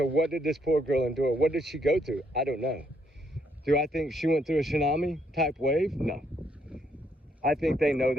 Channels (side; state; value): both; normal; correlation 0.72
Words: what did this poor girl endure? What did she go through? I don't know. Do I think she went through a tsunami type wave? No. I think they know